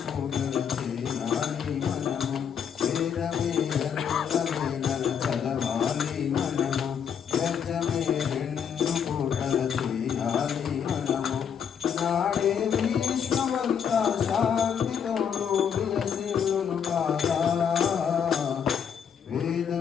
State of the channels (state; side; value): quieter; right; 7.8 dB